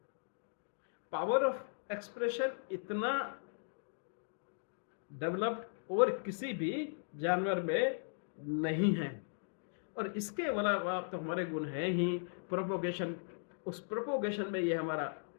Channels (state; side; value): silent; right; digital silence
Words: पावर ऑफ एक्सप्रेशन इतना डेवलप्ड और किसी भी जानवर में नहीं है। और इसके अलावा तो हमारे गुण है ही प्रोपोगेशन। उस प्रोपोगेशन में ये हमारा